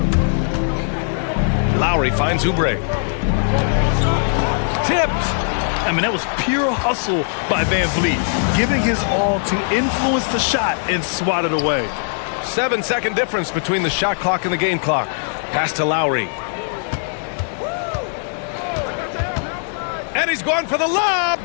Lowry finds Oubre. Tipped. I mean, that was pure hustle by Van Vliet, giving his all to influence the shot and swat it away. 7-second difference between the shot clock and the game clock. Pass to Lowry. And he's going for the lob.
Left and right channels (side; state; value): right; silent; 60 dB below the other